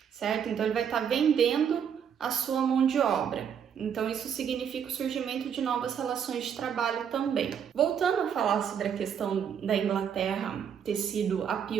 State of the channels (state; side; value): quieter; left; 8.0 dB